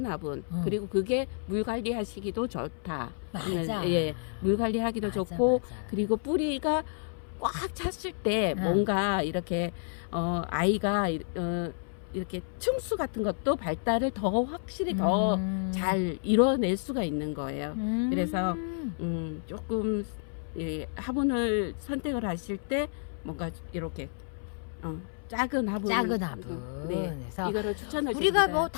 화분 그리고 그게 물 관리하시기도 좋다. 맞아. 예, 물 관리하기도 맞아, 좋고 맞아. 그리고 뿌리가 꽉 찼을 때 뭔가 이렇게 아이가 이렇게 층수 같은 것도 발달을 더 확실히 더 잘 이뤄낼 수가 있는 거예요. 그래서 조금 화분을 선택을 하실 때 뭔가 이렇게 작은 화분. 네. 그래서 이거를 추천을 우리가 드립니다. 뭐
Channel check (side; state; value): right; silent; 58 dB below the other